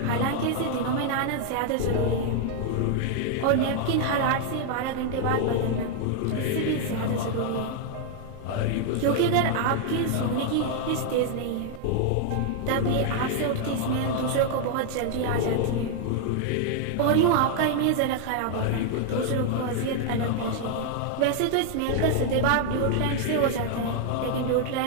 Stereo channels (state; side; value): different; both; correlation 0.00